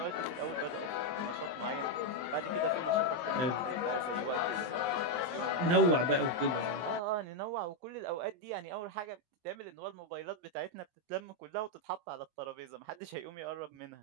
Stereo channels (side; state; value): left; late; 23 ms